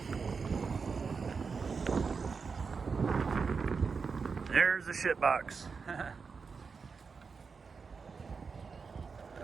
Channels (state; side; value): quieter; left; 5.2 dB